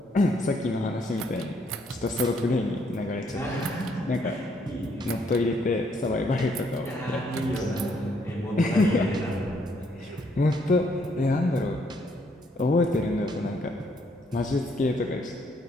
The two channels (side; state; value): both; normal; correlation 0.70